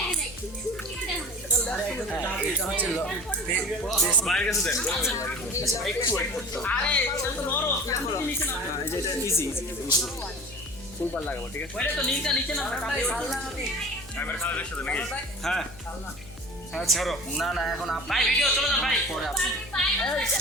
বাইরের কাছে দেন আরে এটা তো নরম নিচে না এটা ইজি ফুলবার লাগাবো ঠিক আছে ওইটা তো নিচে না ক্যামেরা খারাপ দেখতে নাকি হ্যাঁ হ্যাঁ ছাড়ো না এখন ভাই ভিডিও চলে যান ভাই পরে আপনি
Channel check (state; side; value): noise; left; hum, 19 dB below the sound